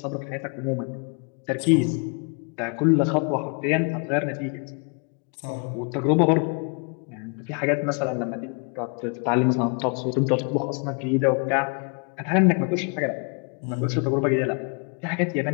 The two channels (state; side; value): quieter; right; 37.1 dB